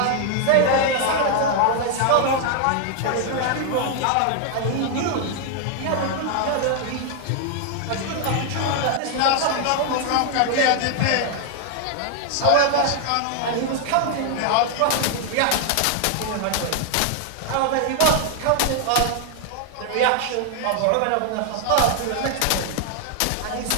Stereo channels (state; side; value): different; both; correlation 0.00